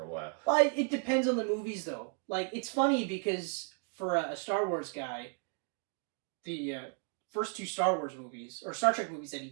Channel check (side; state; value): left; quieter; 39.9 dB